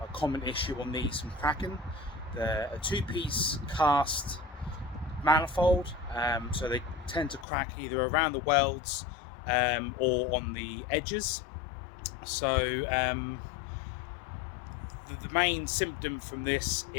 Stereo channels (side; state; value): right; drops out; at 7.5 s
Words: common issue on these from cracking. They're a two-piece cast manifold, so they tend to crack either around the welds or on the edges. So the main symptom from this